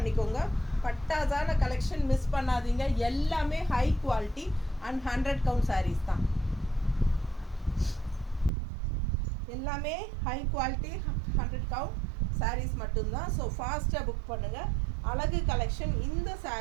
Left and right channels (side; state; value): left; drops out; at 8.5 s